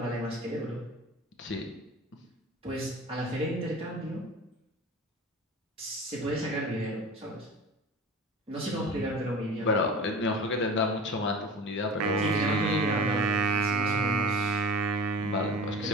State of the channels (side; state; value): both; normal; correlation 0.37